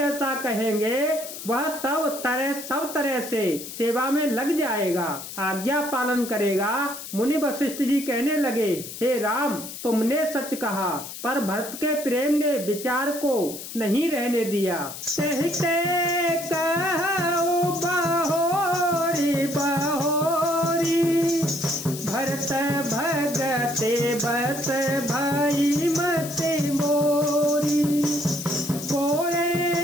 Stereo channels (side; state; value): left; noise; hiss, 10 dB below the sound